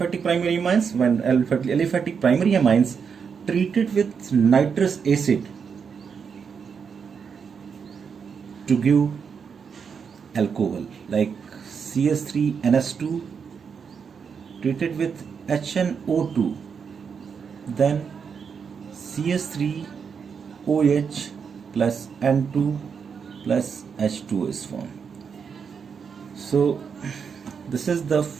primary amines, when aliphatic primary amines treated with nitrous acid to give alcohol, like CH3NS2 treated with HNO2, then CH3OH plus N2 plus H2 is formed. So this is the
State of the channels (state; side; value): quieter; left; 6.4 dB